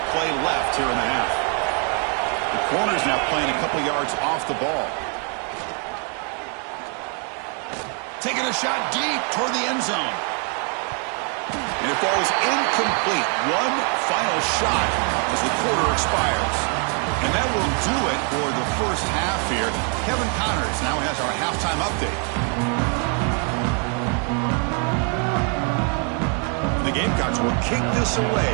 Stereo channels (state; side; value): quieter; left; 39.3 dB